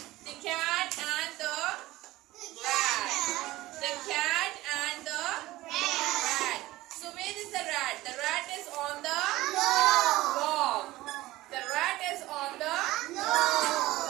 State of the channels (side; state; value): left; quieter; 17.8 dB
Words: The cat and the rat. The cat and the rat. So where is the rat? The rat is on the log. The rat is on the